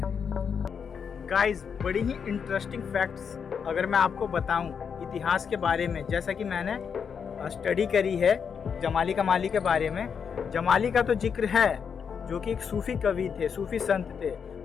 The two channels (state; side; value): quieter; right; 6.7 dB